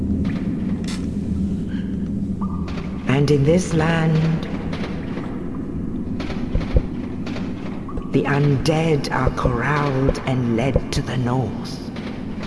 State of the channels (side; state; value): both; identical; correlation 1.00